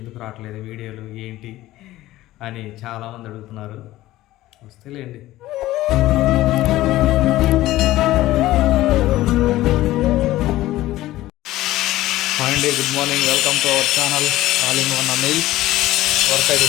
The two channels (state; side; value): quieter; right; 16.0 dB